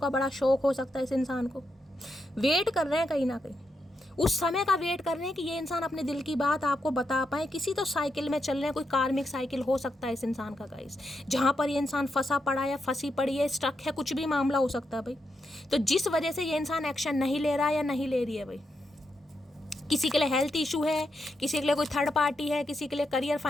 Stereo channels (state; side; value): normal; both; correlation 0.84